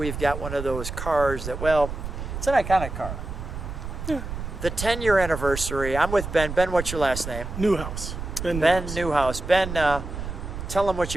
got one of those cars that, well, it's an iconic car. Yeah. The 10-year anniversary. I'm with Ben. Ben, what's your last name? Newhouse. Ben Newhouse. Ben, tell them what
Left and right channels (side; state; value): right; noise; rumble, 7 dB below the sound